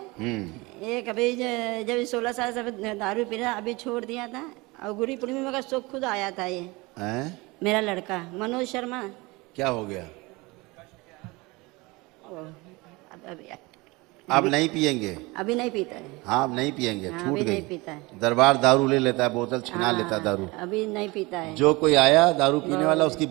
एक अभी जब 16 साल से दारू पी रहा, अभी छोड़ दिया था, और गुरु पूर्णिमा का शौक खुद आया था ये। हैं? मेरा लड़का मनोज शर्मा। क्या हो गया? अभी आप नहीं पिएंगे? अभी नहीं पीता है। हाँ, आप नहीं पिएंगे, हाँ, छूट अभी गई। नहीं पीता है। दरबार दारू ले लेता है, बोतल छिना हाँ, लेता है दारू। अभी नहीं पीता है। जो कोई आया दारू पीने वाला, उसकी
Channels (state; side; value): quieter; left; 23.9 dB